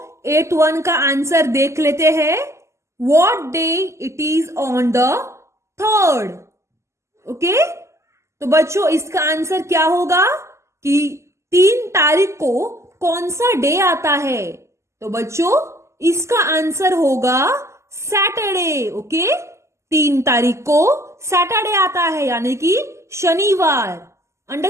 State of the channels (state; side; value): late; left; 0.13 ms